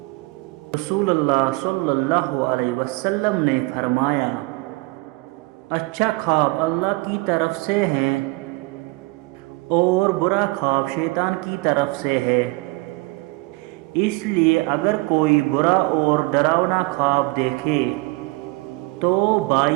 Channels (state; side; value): quieter; left; 23.9 dB